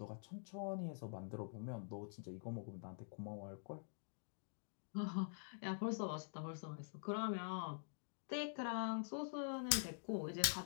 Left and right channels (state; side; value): silent; right; digital silence